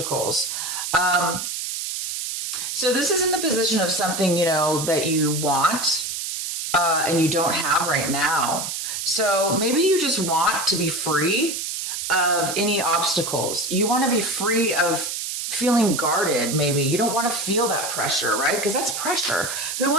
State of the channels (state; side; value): noise; right; hiss, 4 dB below the sound